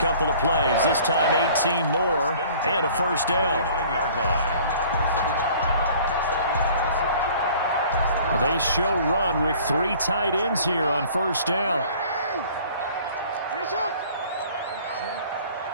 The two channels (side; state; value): both; inverted; correlation -0.51